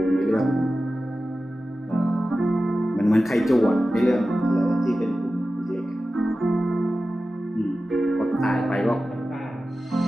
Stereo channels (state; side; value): normal; both; correlation 0.94